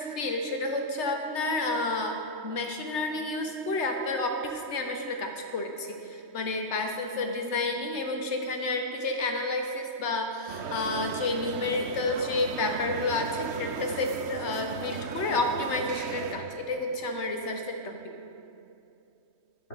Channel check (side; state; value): right; late; 3.3 ms